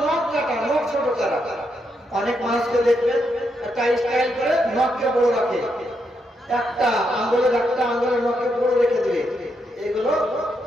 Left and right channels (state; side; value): normal; both; correlation 0.80